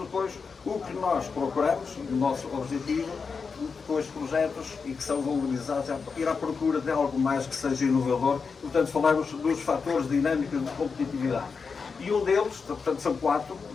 o que nós procuramos, o nosso objetivo, com estes projetos e que são valorizados, é ir à procura de algo mais que seja inovador. Portanto, falamos dos fatores dinâmicos de competitividade. E um deles, portanto são 4,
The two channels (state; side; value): quieter; right; 5.2 dB